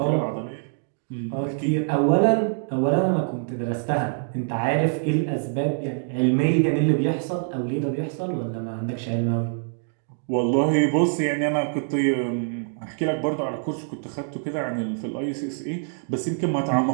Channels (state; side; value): silent; left; 62 dB below the other